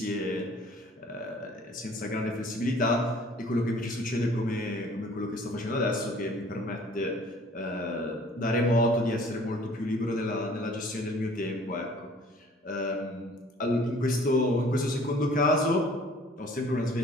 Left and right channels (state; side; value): normal; both; correlation 0.53